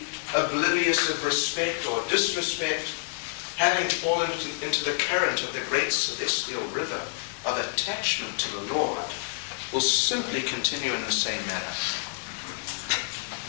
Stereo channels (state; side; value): silent; right; 60 dB below the other